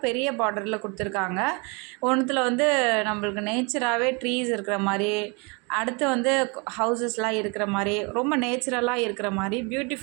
பெரிய பார்டரில் கொடுத்துருக்காங்க. ஒன்றுத்தில் வந்து நம்மளுக்கு நேச்சராகவே ட்ரீஸ் இருக்கிற மாதிரி, அடுத்து வந்து ஹவுசஸ்லாம் இருக்கிற மாதிரி, ரொம்ப நேச்சுரலாக இருக்கிற மாதிரி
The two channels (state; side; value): quieter; left; 31.2 dB